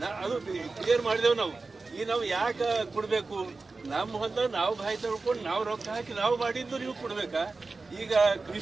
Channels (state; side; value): quieter; left; 3.8 dB